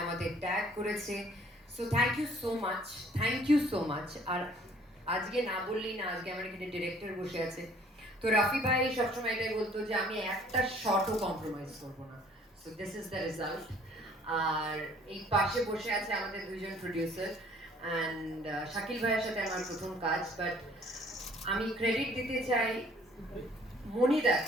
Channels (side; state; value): both; normal; correlation 0.57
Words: আমাদের ট্যাগ করেছে। So thank you so much. আর আজকে না বললেই না, আজকে আমার এখানে ডিরেক্টর বসে আছে, তো রাফি ভাই সবসময় এটাই বলতো যে আমি একটা শটও কম্প্রোমাইজ করবো না। So this is the result. আর এই পাশে বসে আছে আমাদের দুইজন প্রডিউসার অ্যান্ড শাকিল ভাইয়ের সাথে আমার প্রথম কাজ, বাট আমি ক্রেডিট দিতে চাই